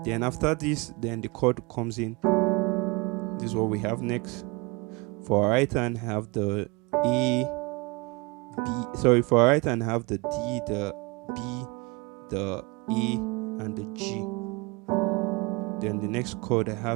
Then after this, then the chord comes in. This is what we have next. For our right hand, have the A, B. Sorry, for our right hand, have the D, the B, the A, and the G. Then the next chord I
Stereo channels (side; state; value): left; quieter; 27.0 dB